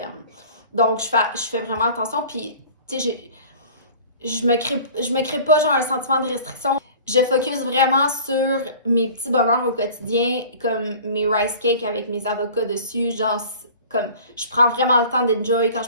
Donc, je fais vraiment attention. Puis, tu sais, je me crée pas genre un sentiment de restriction. Je focus vraiment sur mes petits bonheurs au quotidien, comme mes rice cakes avec mes avocats dessus, genre comme je prends vraiment le temps d'enjoy quand je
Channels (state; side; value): inverted; both; correlation -0.44